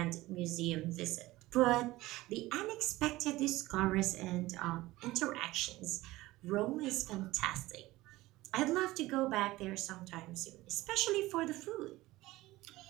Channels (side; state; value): left; quieter; 18.4 dB